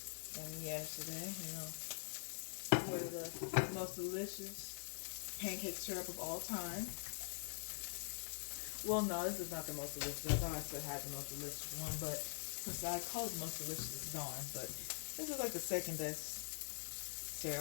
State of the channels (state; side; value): silent; right; digital silence